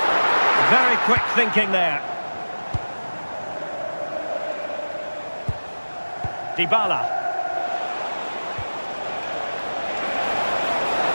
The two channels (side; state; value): both; inverted; correlation -1.00